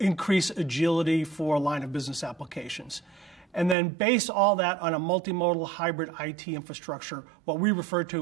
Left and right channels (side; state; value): left; drops out; at 3.8 s